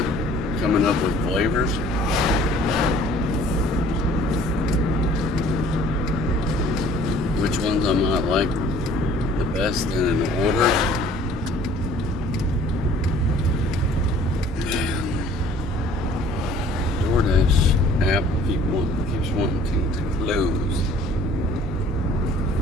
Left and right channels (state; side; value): normal; both; correlation 0.53